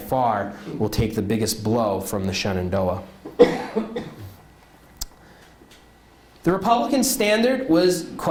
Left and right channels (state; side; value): identical; both; correlation 1.00